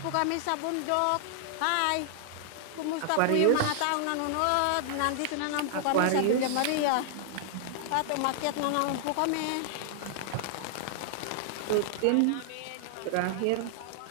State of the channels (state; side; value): different; both; correlation -0.01